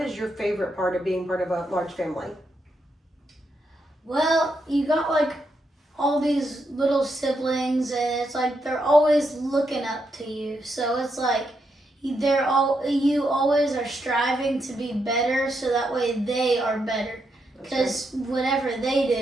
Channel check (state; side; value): normal; both; correlation 0.81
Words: your favorite part of being part of a large family? Well, you got like all these little siblings, and it's like they're always looking up to you. So it's like you always are striving to be better, so that way they are better. Because whatever they